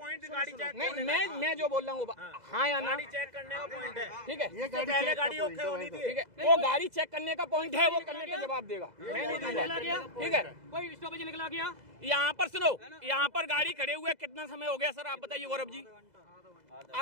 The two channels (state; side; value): late; left; 2.0 ms